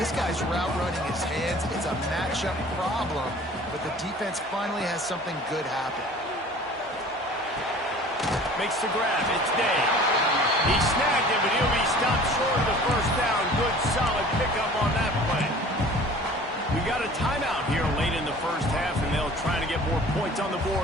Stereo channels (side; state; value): both; normal; correlation 0.46